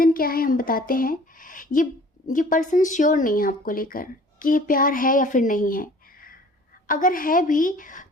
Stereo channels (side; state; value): both; normal; correlation 0.50